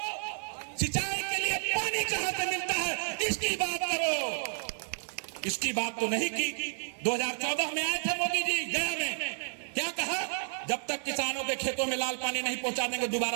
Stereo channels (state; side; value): silent; left; 57 dB below the other